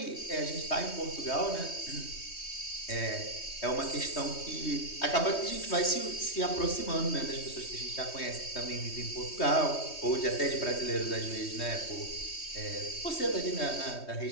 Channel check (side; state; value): right; late; 3.2 ms